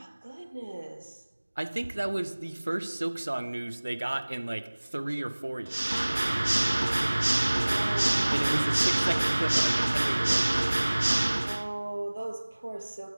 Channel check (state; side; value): inverted; both; correlation -1.00